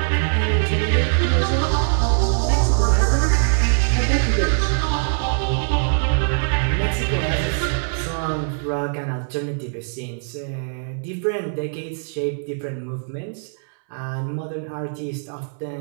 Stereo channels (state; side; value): silent; left; 64 dB below the other